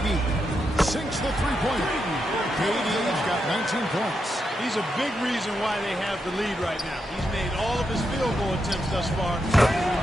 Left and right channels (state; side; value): normal; both; correlation 0.84